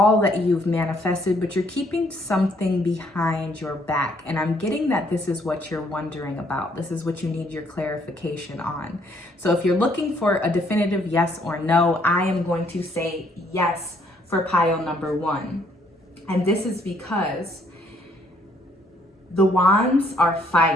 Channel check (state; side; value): normal; both; correlation 0.67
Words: that you've manifested, but you're keeping something behind your back. And I'm getting that this is what you're wondering about. This is what you need your clarification on. So if you're looking for a definitive yes or no, I am going to say yes for pile number 1. And this is because the wands are